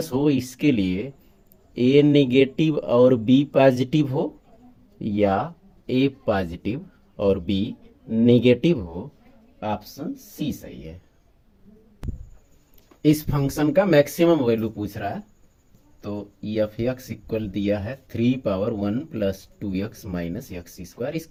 हो, इसके लिए ए नेगेटिव और बी पॉजिटिव हो, या ए पॉजिटिव और बी नेगेटिव हो। ऑप्शन सी सही है। इस फंक्शन का मैक्सिमम वैल्यू पूछ रहा है, तो एफ एक्स इक्वल दिया है 3 power 1 plus 2x minus x square.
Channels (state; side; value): identical; both; correlation 1.00